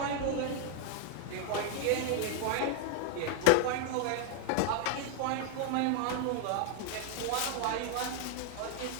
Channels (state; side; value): different; both; correlation 0.00